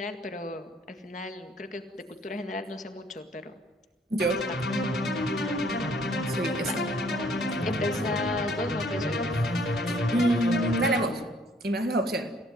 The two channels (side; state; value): both; normal; correlation 0.61